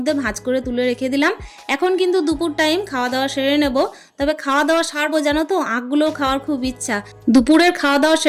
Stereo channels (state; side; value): identical; both; correlation 1.00